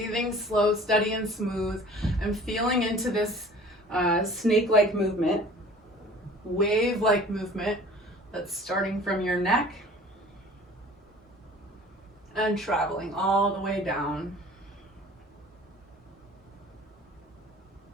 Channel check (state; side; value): normal; both; correlation 0.47